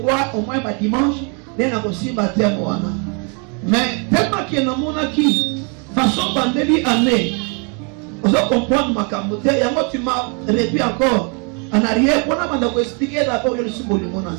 au moins ma dimanche, mais tellement qu'il y a qui façon pandémie année, vous allez comprendre ma camote, et moi tu m'as répété encore en arrière, on a expliqué d'abord le symbole de mon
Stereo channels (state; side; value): quieter; left; 37.0 dB